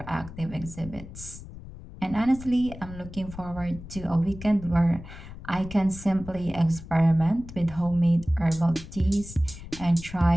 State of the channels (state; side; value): noise; left; rumble, 14 dB below the sound